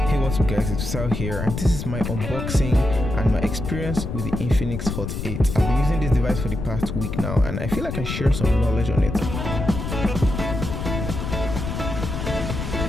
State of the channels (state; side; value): noise; left; rumble, 4 dB below the sound